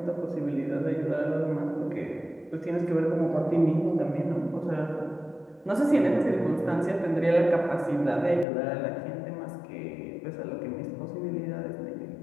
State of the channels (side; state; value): right; drops out; at 8.5 s